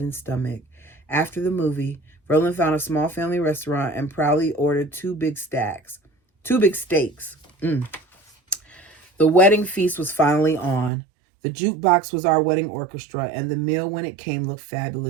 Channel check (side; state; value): left; drops out; at 10.9 s